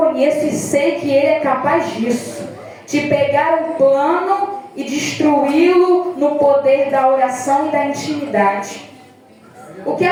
e sei que ele é capaz disso. De pegar um plano e destruí-lo no poder da oração e da intimidade. O que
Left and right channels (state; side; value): identical; both; correlation 1.00